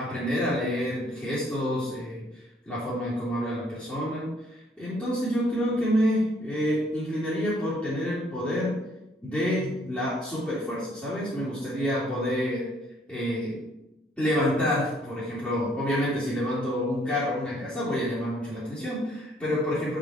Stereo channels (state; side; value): normal; both; correlation 0.64